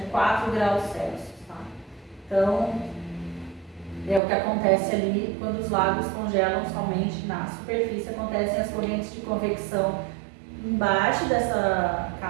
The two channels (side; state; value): left; drops out; at 4.2 s